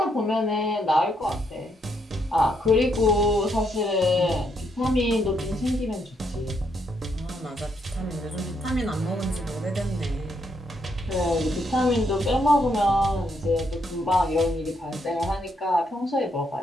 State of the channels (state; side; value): normal; both; correlation 0.76